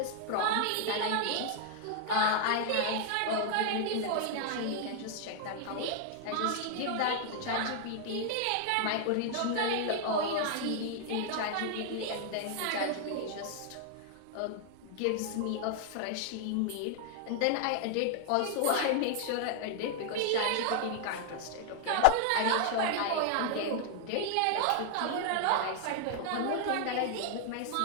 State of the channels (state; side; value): different; both; correlation 0.00